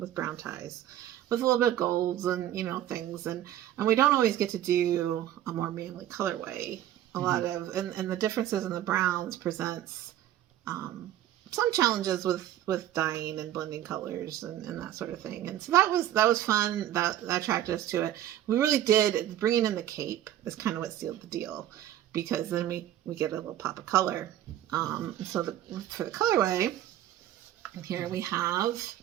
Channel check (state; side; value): quieter; left; 12.2 dB